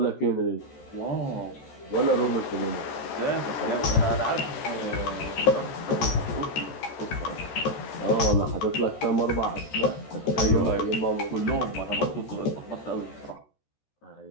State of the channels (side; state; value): right; late; 13 ms